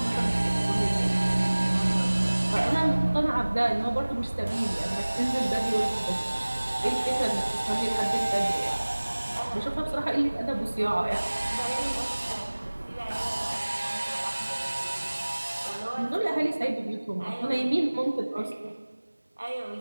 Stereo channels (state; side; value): inverted; both; correlation -1.00